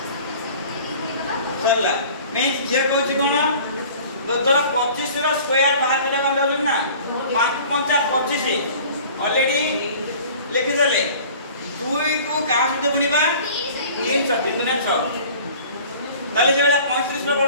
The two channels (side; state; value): both; inverted; correlation -0.46